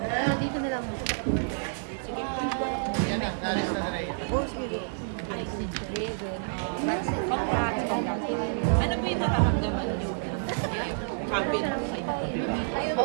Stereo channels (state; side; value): silent; left; digital silence